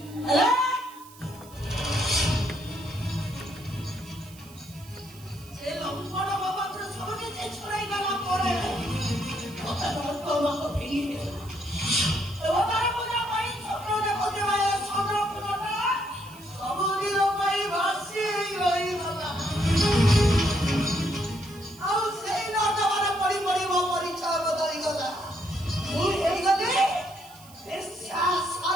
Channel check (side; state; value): right; noise; hiss, 22 dB below the sound